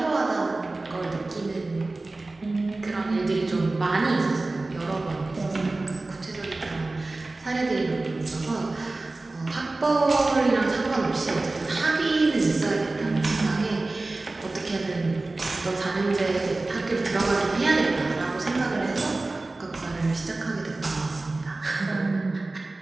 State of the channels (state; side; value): quieter; left; 3.1 dB